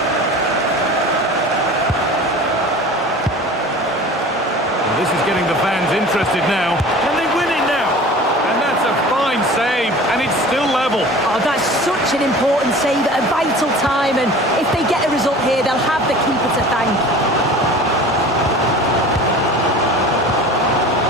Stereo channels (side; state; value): both; normal; correlation 0.40